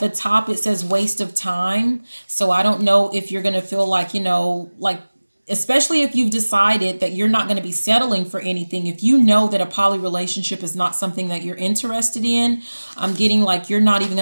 top it says waste of time, so I don't know if you're going to feel like, like, especially if you've decided that you're not going to be settling for anything, if you know that a poly relationship is not something that you're interested in, I'm getting like you're not even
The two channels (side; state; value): both; inverted; correlation -1.00